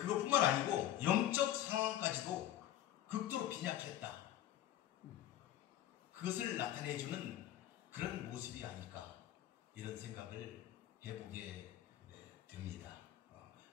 아니고 영적 상황까지도 극도로 빈약했다, 그것을 나타내주는 그런 모습이 아닐까, 이런 생각을 해보게 됩니다.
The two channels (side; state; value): right; quieter; 12.5 dB